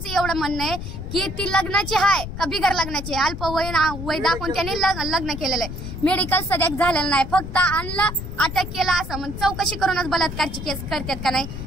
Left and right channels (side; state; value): left; noise; rumble, 8 dB below the sound